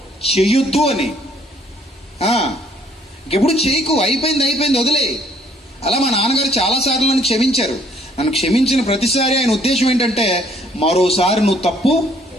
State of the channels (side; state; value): both; normal; correlation 0.62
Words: చెయ్యొద్దు అని. ఇంకెప్పుడు చేయకు, అయిపోయింది వదిలే. అలా మా నాన్నగారు చాలాసార్లు నన్ను క్షమించారు. నన్ను క్షమించిన ప్రతిసారి ఆయన ఉద్దేశం ఏంటంటే మరోసారి నువ్వు తప్పు